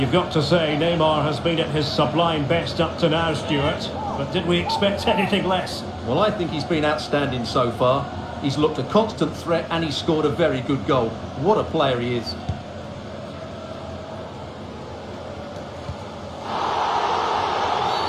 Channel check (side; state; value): both; identical; correlation 1.00